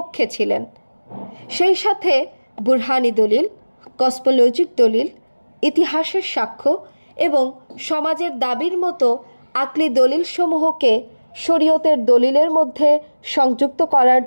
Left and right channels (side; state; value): both; inverted; correlation -1.00